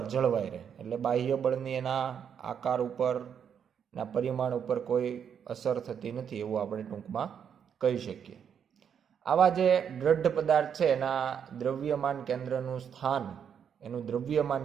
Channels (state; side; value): quieter; left; 7.9 dB